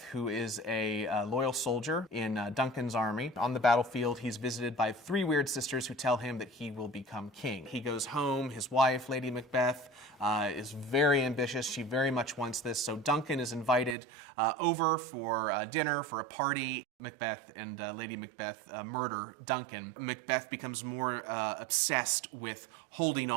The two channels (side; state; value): left; drops out; at 14.0 s